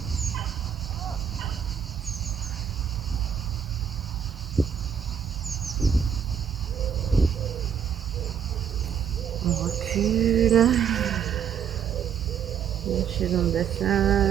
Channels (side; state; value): left; quieter; 8.2 dB